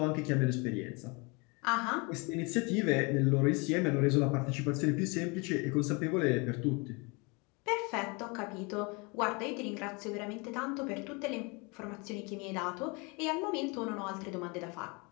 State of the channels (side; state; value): right; quieter; 29.4 dB